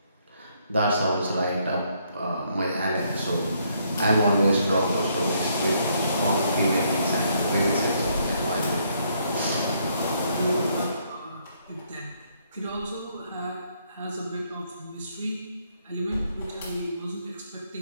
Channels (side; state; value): both; inverted; correlation -0.71